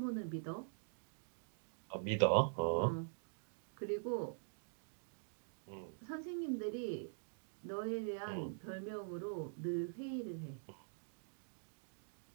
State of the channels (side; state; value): left; silent; digital silence